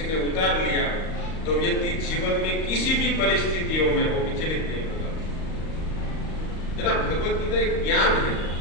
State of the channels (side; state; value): right; late; 38 ms